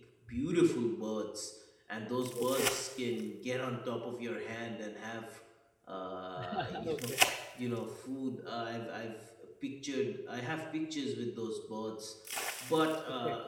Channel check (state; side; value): identical; both; correlation 1.00